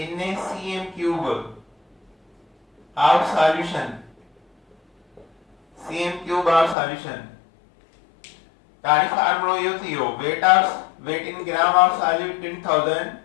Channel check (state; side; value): drops out; right; at 6.8 s